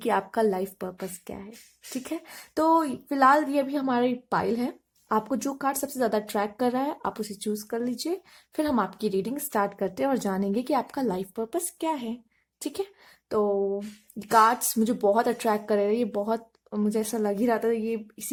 आपका लाइफ पर्पस क्या है। ठीक है, तो फिलहाल ये भी हमारी पाइल है। आपको जो कार्ड सबसे ज्यादा ट्रैक कर रहा है आप उसे चूज कर लीजिए। फिर हम आपकी रीडिंग स्टार्ट करते हैं और जानेंगे कि आपका लाइफ पर्पस क्या है। ठीक है, तो कार्ड्स मुझे बहुत अट्रैक्ट कर रहे हैं। ये बहुत, मुझे ऐसा लग ही रहा था ये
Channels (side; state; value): both; identical; correlation 1.00